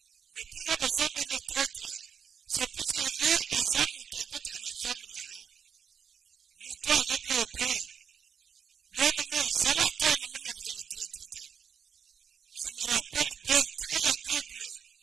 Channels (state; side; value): quieter; left; 7.4 dB